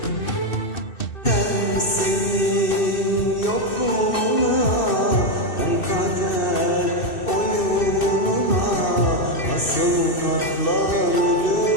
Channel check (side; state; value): right; late; 2.6 ms